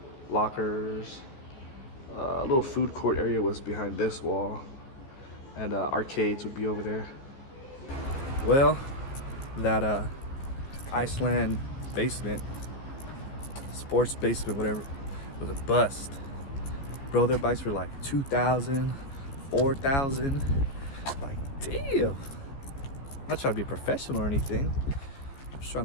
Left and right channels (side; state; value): right; late; 15 ms